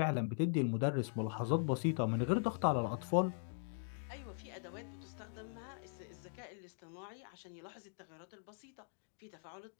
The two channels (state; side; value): silent; right; digital silence